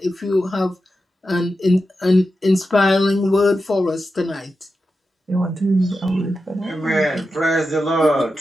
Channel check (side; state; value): both; normal; correlation 0.90